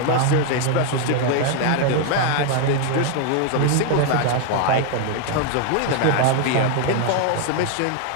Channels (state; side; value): different; both; correlation 0.00